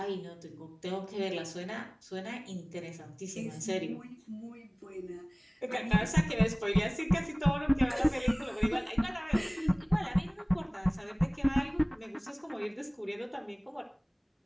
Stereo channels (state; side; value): identical; both; correlation 1.00